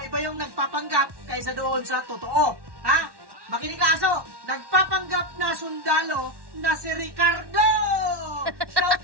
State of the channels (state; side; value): late; left; 1.1 ms